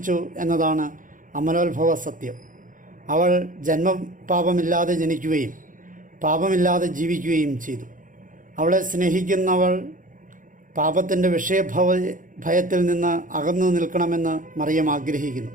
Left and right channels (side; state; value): left; late; 0.38 ms